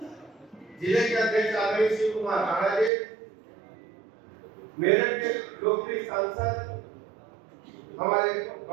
जिले के अध्यक्ष आदरणीय शिव कुमार राणा जी, मेरठ के लोकप्रिय सांसद हमारे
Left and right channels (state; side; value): drops out; left; at 2.9 s